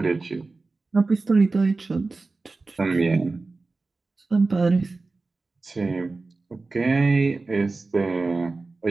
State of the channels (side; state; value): left; quieter; 3.6 dB